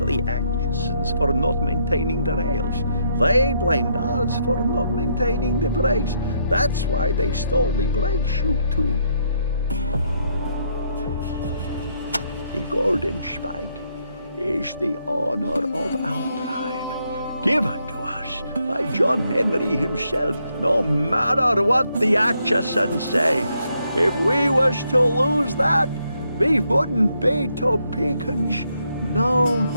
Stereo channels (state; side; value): inverted; both; correlation -0.75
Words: Atchisons for not maintaining the rails. They blamed us for not maintaining the brakes. That's why they stole the brake shoe too. The golden spike is the honor of our tribe, given to us by John Henry himself, no matter what the Atchisons say. If we was to lose that, we wouldn't be Topekans no